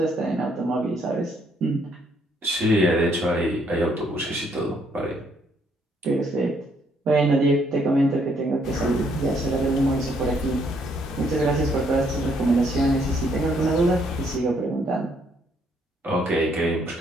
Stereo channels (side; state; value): both; normal; correlation 0.69